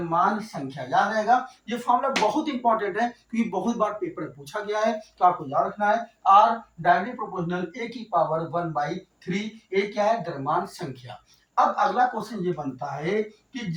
संख्या। याद रहेगा। ये फॉर्मूला बहुत इंपॉर्टेंट है क्योंकि बहुत बार पेपर में पूछा गया है, तो आपको याद रखना है। आर डायरेक्टली प्रोपोर्शनल ए की पावर 1/3। ए क्या है? द्रव्यमान संख्या। अब अगला क्वेश्चन ये बनता है कि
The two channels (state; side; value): identical; both; correlation 1.00